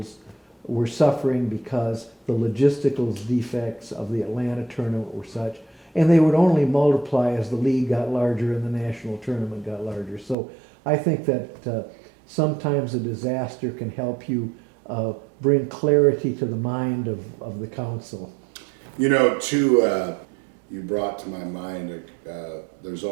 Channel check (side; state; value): left; drops out; at 10.4 s